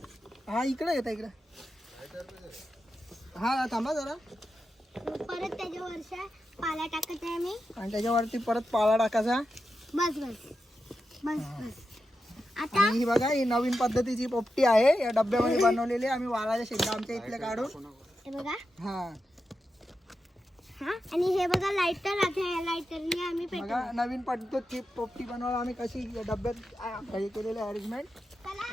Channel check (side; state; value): both; normal; correlation 0.89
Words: हा इकडे येता इकडे. हा थांबा जरा. परत त्याच्यावर पाला टाकत आहे मी. आणि त्याच्यावरती परत पाला टाकायचा. बस बस बस बस. आता आणि ही बघा ही नवीन पद्धतीची पोपटी आहे, या डब्यामध्ये बनवलेली. आम्ही वालाच्या शेंगा आमच्या इथल्या काढून हे बघा. हा हा आणि हे बघा लाइटर. आता लाइटरने आम्ही बघा नवीन पद्धतीची पोपटी बनवायला आम्ही कशी डब्यात हे केलेले अरेंजमेंट.